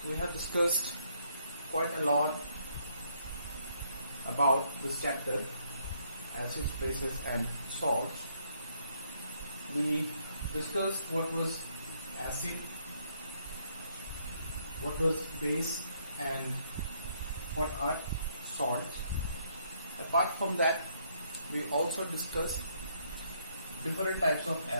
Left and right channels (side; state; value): both; inverted; correlation -0.70